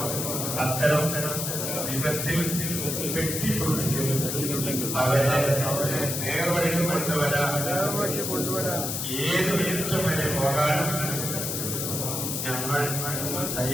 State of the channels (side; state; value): left; noise; hiss, 2 dB below the sound